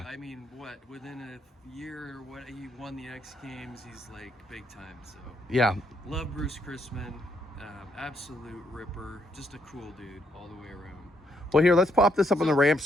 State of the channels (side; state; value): both; normal; correlation 0.74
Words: I mean, within a year or what, he won the X Games. He's like big time. So. Yeah. Love Bruce Crispin. Absolute ripper. Just a cool dude all the way around. Well, here, let's pop this up on the ramp